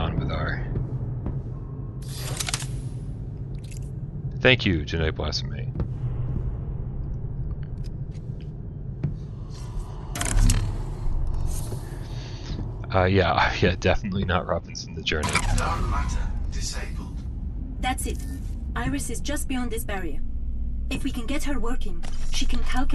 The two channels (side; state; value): both; identical; correlation 1.00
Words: with our. Thank you, Genetic Blasphemy. Yeah, definitely not Robinson the Journey. Dark matter disabled. That's it. Iris is just beyond this barrier. If we can get her working, she can